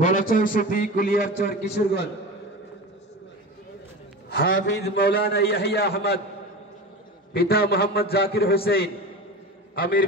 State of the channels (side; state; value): both; normal; correlation 0.29